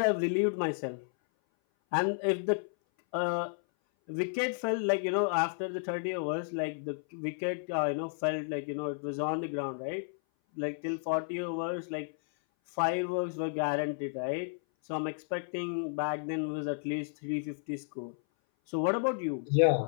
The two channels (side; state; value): right; silent; 56 dB below the other